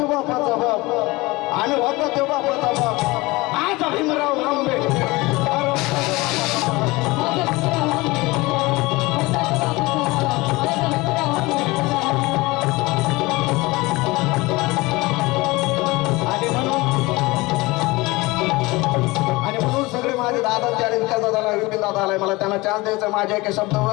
बापाचा बाप आणि होता तो बापाचा बाप आज भीमराव आंबेडकर आणि म्हणून सगळे माझे दादांचे आणि विकास दादाला विपिन दादा आलाय मला त्यांना चान्स द्यायचा माझ्या एका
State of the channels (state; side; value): quieter; right; 22.3 dB